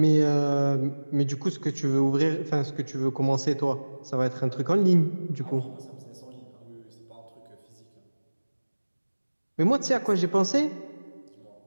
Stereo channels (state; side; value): inverted; both; correlation -1.00